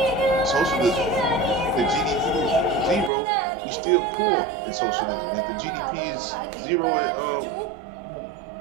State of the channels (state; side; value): drops out; left; at 3.1 s